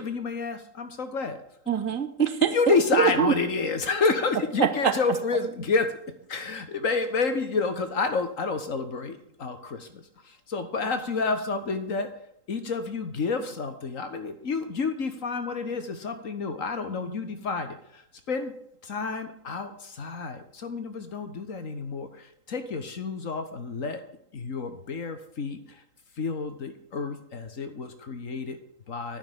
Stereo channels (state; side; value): late; right; 3.8 ms